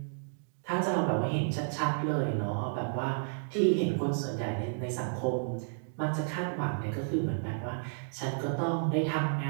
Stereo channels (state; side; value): silent; left; digital silence